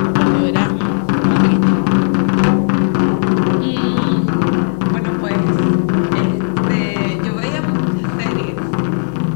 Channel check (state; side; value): silent; right; 70 dB below the other